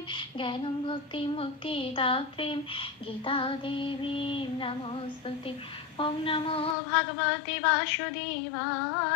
জ্ঞানম ভক্তি মুক্তি দাত্রীম গীতা দেবী নমস্তুতে। ওম নমো ভগবতে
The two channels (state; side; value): drops out; right; at 6.8 s